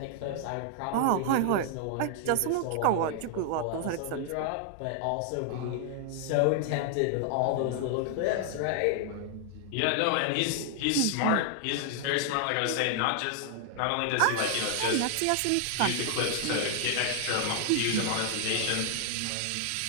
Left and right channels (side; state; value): both; different; correlation 0.00